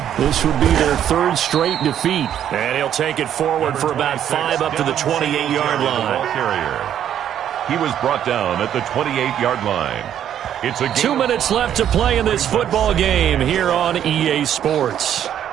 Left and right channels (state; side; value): quieter; left; 10.1 dB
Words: This would be their 3rd straight defeat. And he'll take it forward for about 5 up to the 28-yard line. He was brought down at the 28-yard line. It's a 2 minutes left to play in this football game here on EA Sports.